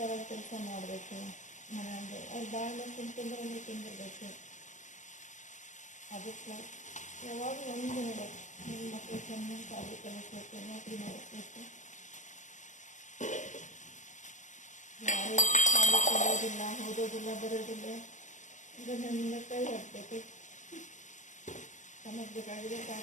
ಕೆಲಸ ಮಾಡಬೇಕು. ಮನೆಯಲ್ಲಿ ಅವ್ರು ಬಾಳೆ ತಿಂತಿದ್ರೆ ಒಂದು ತಿಂದಿರಬೇಕು. ಅದಕ್ಕೆ ಯಾವಾಗ ಒಂದು ನೋಡೋದು, ನಿಮ್ಮ ಮಕ್ಕಳು ಚೆನ್ನಾಗಿ ಸಾಲಿ ಕಲಿಸ್ಬೇಕು, ನೌಕರಿ ಮಾಡಿಸ್ಬೇಕು. ಯಾರು ಸಾಲಿ ಕಲಿಯೋದಿಲ್ಲ, ಓದೋದಿಲ್ಲ, ಬರೋದಿಲ್ಲ, ಇದನ್ನೆಲ್ಲ ಕೈ ಒಡ್ಬೇಕು. ತಮಗೆ ಬೇಕಾಗಿದೆ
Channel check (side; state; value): right; late; 0.35 ms